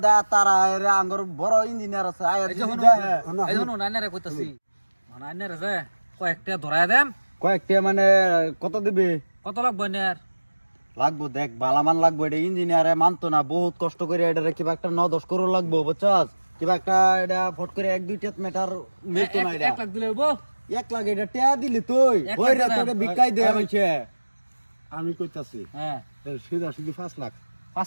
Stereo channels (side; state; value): both; inverted; correlation -1.00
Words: দেয় তারা এর আঙ্গর বড় ইঞ্জিনিয়ার আছে আয় এই যদি যখন দেয়, এই যখন আইনারে কইতাছি মানে আইনারে যে কয়েকটা ধরায় দেম কয়েকটা মানে কত দিবে কত লাগবে আইনার লাগবো দেখ বালামান লাগবো এটা ইঞ্জিনিয়ারে মানতো না বহুত কষ্ট করে এটা কিবা একটা 9-10 করোড় লাগবো বুঝছস কিবা একটা এটা ফট করে 1-2 মিটার মিলতো না এটা 1 লাখ দিলে হইবো 1 লাখ এটা টিয়া দিলি তুই 1 ওই রে লাখ তোকে বিকাই দে আমাকে আমি কইতাছি হ্যাঁ সিধা সিধি 5 লাখ